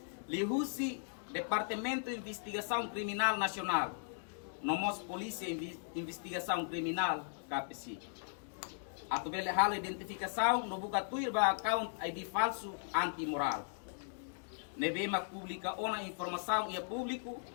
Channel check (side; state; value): right; silent; digital silence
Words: lihusi Departamento de Investigação Criminal Nacional, nomos Polícia Investigação Criminal, KPC. Atubele halo identificação no buka tuir ba account ID falso antimoral. Nebema publica ona informação e público,